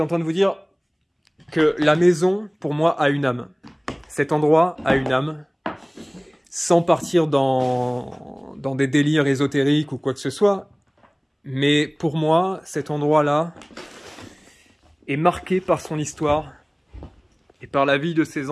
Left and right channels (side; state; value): both; identical; correlation 1.00